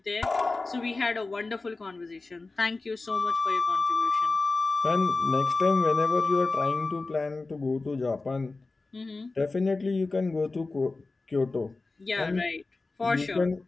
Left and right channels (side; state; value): right; quieter; 3.6 dB